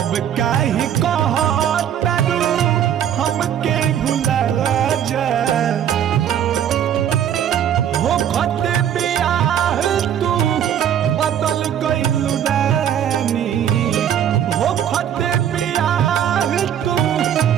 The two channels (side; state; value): left; quieter; 9.7 dB